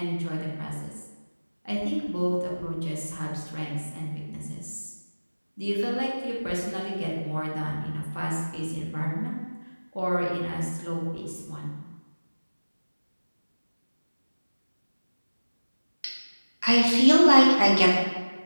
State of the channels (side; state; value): both; inverted; correlation -1.00